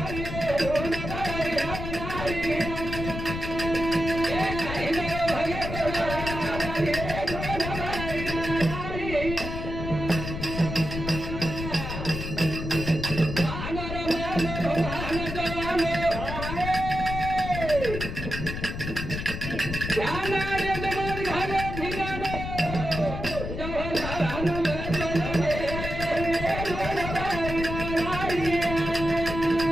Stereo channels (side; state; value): left; noise; rumble, 6 dB below the sound